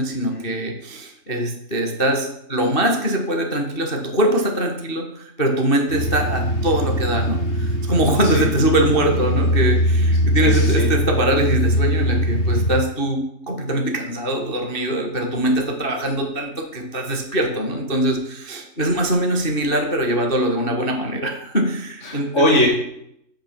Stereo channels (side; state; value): right; late; 3.2 ms